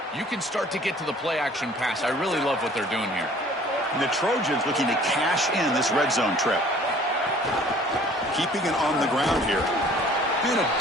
you can start to get to the play-action pass. I really love what they're doing here. And the Trojans looking to cash in this red zone trip. Keeping it on the ground here. And a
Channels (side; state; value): both; normal; correlation 0.52